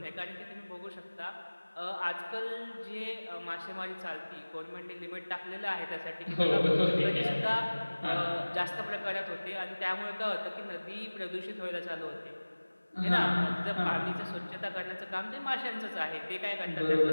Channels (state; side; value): inverted; both; correlation -1.00